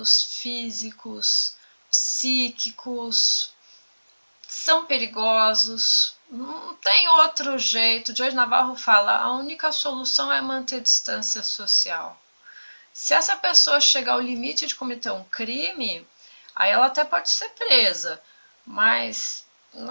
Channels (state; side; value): inverted; both; correlation -1.00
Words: físicos, psíquicos, são perigosos, não tem outro jeito. Jorge Navarro fala, a única solução é manter distância social. Se essa pessoa chegar ao limite de cometer um crime, Aí ela até pode ser presa, mas